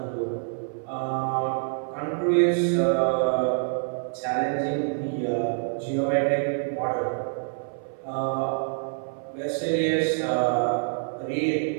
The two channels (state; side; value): silent; left; 61 dB below the other